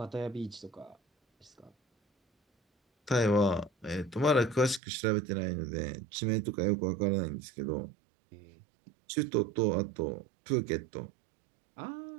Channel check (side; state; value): left; drops out; at 4.8 s